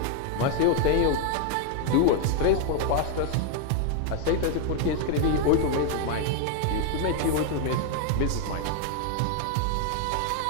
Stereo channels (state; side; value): different; both; correlation 0.01